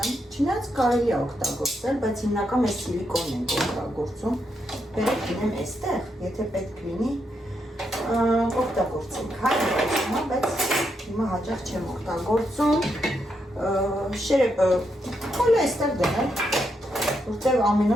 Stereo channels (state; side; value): normal; both; correlation 0.81